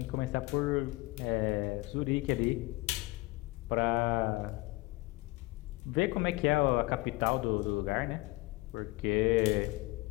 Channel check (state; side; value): quieter; right; 22.0 dB